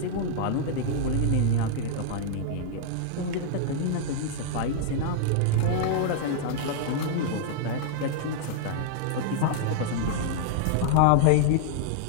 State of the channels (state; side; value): different; both; correlation -0.01